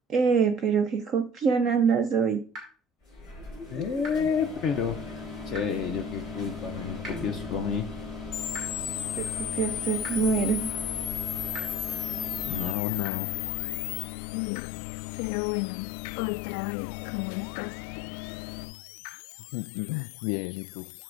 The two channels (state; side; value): drops out; right; at 12.8 s